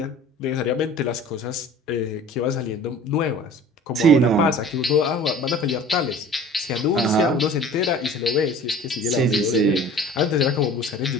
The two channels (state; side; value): normal; both; correlation 0.44